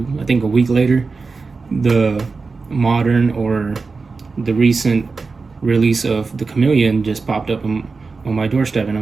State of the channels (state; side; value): quieter; left; 4.3 dB